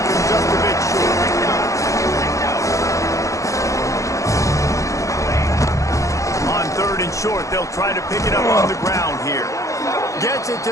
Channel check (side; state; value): right; late; 0.15 ms